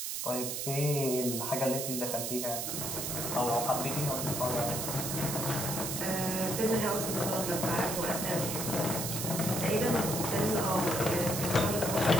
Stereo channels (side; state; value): right; noise; hiss, 3 dB below the sound